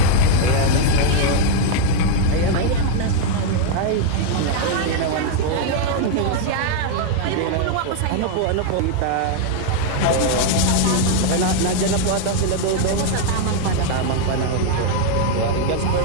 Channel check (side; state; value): both; different; correlation 0.00